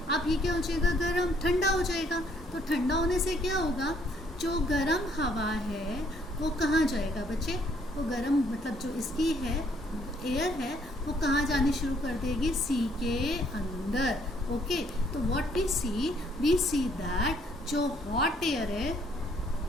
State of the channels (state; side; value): normal; both; correlation 0.66